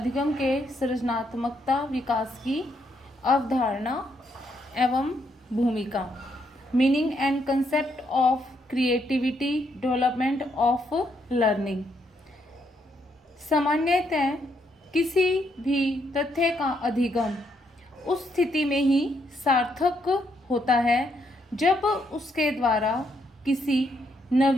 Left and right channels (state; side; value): normal; both; correlation 0.75